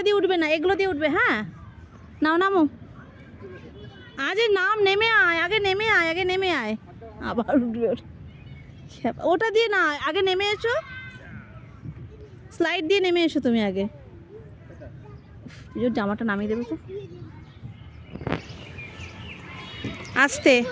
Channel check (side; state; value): both; identical; correlation 1.00